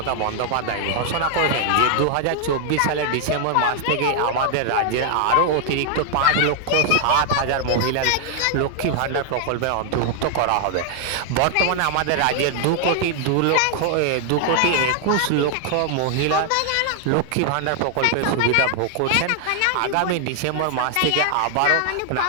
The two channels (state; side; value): different; both; correlation 0.00